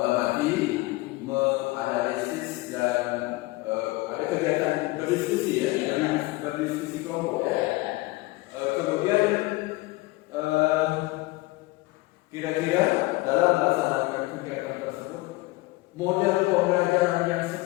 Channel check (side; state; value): right; quieter; 21.4 dB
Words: menganalisis, dan ada kegiatan berdiskusi ya, berdiskusi kelompok ya. Kemudian kira-kira dalam melaksanakan kegiatan tersebut, model pembelajaran yang